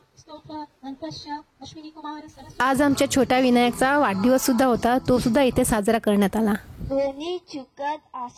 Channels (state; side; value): identical; both; correlation 1.00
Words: स्तोत्र अन्तस्य अश्विनी कुमार सरस्वती। आज आमच्या छोट्या विनायकचा वाढदिवस सुद्धा होता, तो सुद्धा इथे साजरा करण्यात आला। कोणी चुकत